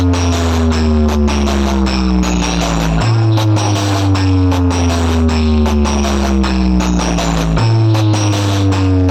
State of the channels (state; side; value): identical; both; correlation 1.00